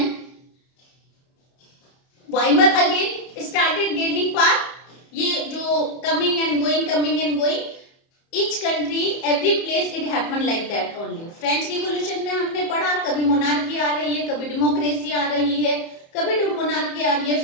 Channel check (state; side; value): late; right; 30 ms